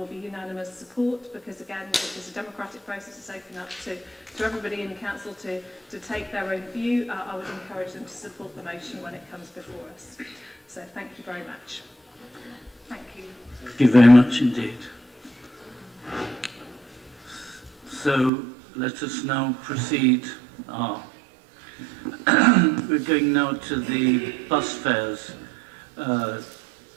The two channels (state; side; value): drops out; left; at 18.3 s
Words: be unanimous support, because again, this is a democratic process. It's open up to everybody in the council to take their own view. I would encourage them to support the motion when it comes before us. So thank you very much. Thank you. Thank you very much indeed. So let us now proceed. We're going now to the bus fares.